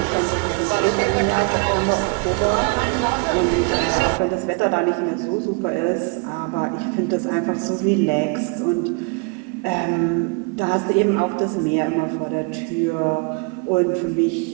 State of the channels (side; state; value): left; quieter; 31.5 dB